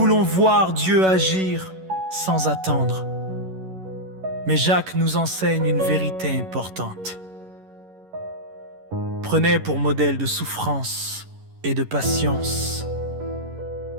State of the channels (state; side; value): late; left; 11 ms